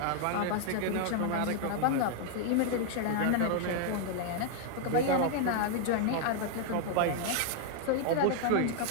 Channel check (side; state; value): both; different; correlation 0.00